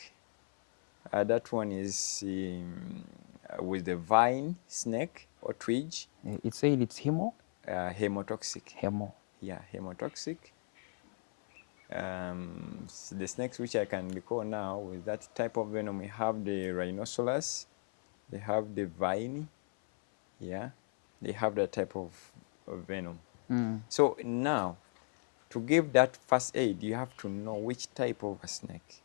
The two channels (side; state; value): right; silent; 54 dB below the other